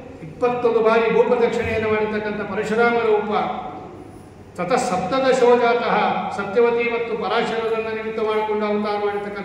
21 ಬಾರಿ ಭೂಪ್ರದಕ್ಷಿಣೆಯನ್ನು ಮಾಡಿರ್ತಕ್ಕಂಥ ಪರಶುರಾಮ ರೂಪ. ತತಃ ಸಪ್ತದಶೋಜಾತಃ ಸತ್ಯವತಿ ಮತ್ತು ಪರಾಶರರನ್ನು ನಿಮಿತ್ತ ಮಾಡಿಕೊಂಡು ಅವತಾರ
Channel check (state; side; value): identical; both; correlation 1.00